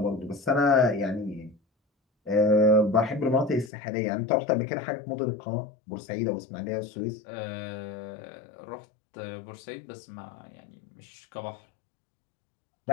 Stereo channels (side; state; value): right; drops out; at 3.7 s